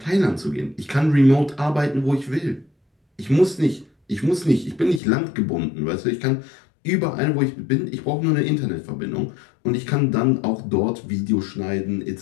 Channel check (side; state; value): right; drops out; at 5.0 s